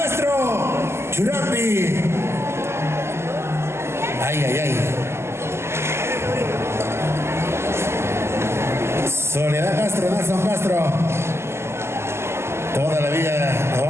Churambi. Ay, ay, ay. Soledad Castro, Nelson Castro. Toda la vida nos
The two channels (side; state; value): left; late; 0.12 ms